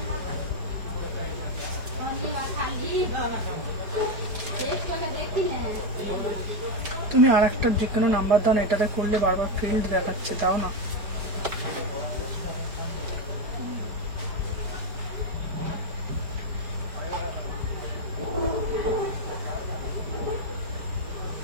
আর একটা যে কোনো নাম্বার দাও না, এটাতে করলে বারবার ফিল্ড দেখাচ্ছে, দাও না।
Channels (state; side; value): late; left; 4.9 ms